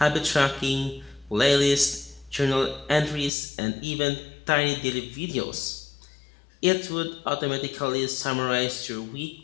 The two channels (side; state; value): right; drops out; at 3.3 s